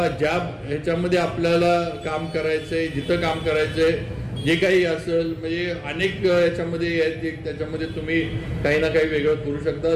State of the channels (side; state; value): both; identical; correlation 1.00